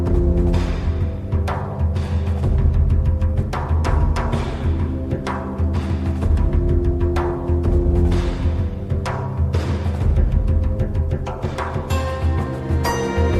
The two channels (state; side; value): identical; both; correlation 1.00